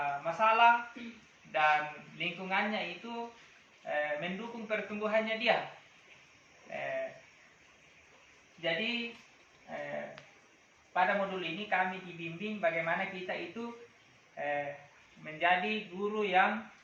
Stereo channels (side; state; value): both; identical; correlation 1.00